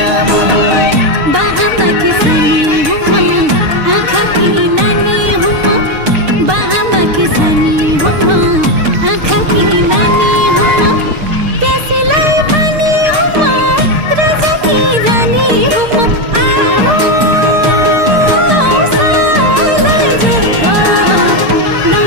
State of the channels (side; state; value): left; late; 6.6 ms